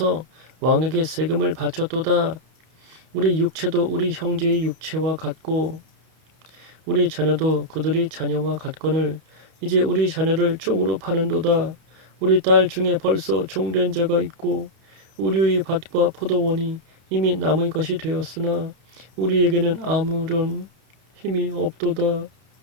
왕에게 세금을 바쳤도다. 우리 육체도 우리 형제의 육체와 같고 우리 자녀도 그들의 자녀와 같거늘 이제 우리 자녀를 종으로 파는도다. 우리 딸 중에 벌써 종된 자가 있고 우리의 밭과 포도원이 이미 남의 것이 되었으나 우리에게는 아무런 힘이 없도다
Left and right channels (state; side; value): late; left; 31 ms